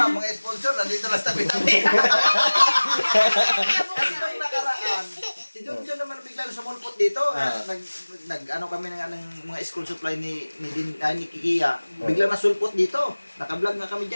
mga sponsor, nandito lang sa tabi-tabi. Kasi nung nakaraan, si John naman bigla sumulpot dito. Nag-ano kami ng mga school supply ni Kikia. Bigla nasulpot dito. Naka-vlog nga kami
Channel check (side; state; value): both; inverted; correlation -1.00